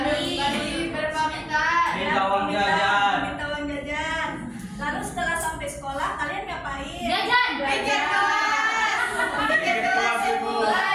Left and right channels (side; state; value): both; identical; correlation 1.00